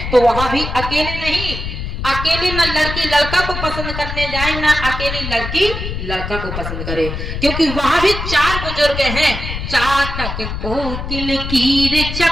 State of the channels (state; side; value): noise; left; rumble, 6 dB below the sound